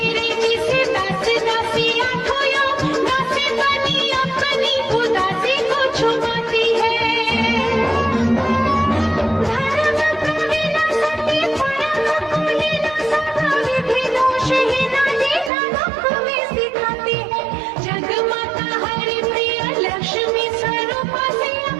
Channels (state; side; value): drops out; left; at 15.5 s